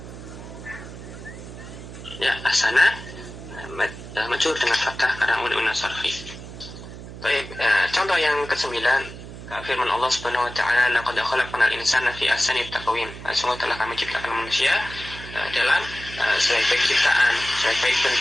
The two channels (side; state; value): right; noise; hum, 13 dB below the sound